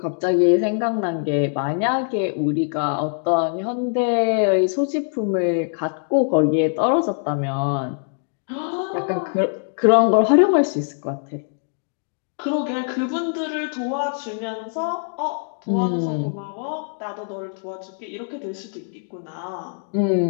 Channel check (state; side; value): silent; right; digital silence